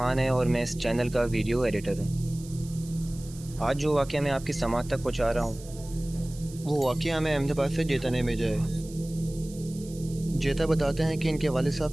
है और मैं इस चैनल का वीडियो एडिटर हूँ। आज जो वाक़या मैं आपकी समात तक पहुँचा रहा हूँ वो वाक़या हमें अहमदाबाद से जेता ने भेजा है। जेता बताते हैं कि इनके वालिद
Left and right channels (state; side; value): noise; right; hiss, 19 dB below the sound